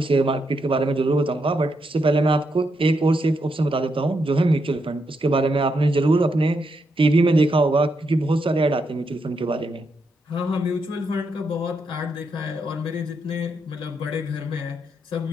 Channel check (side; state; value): both; normal; correlation 0.81